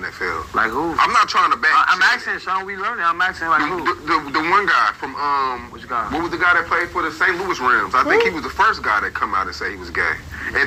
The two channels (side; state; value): both; identical; correlation 1.00